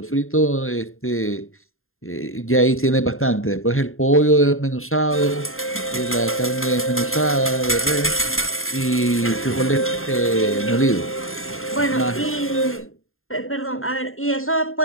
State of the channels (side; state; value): right; late; 0.61 ms